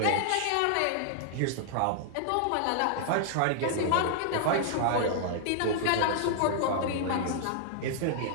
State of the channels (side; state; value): both; different; correlation -0.01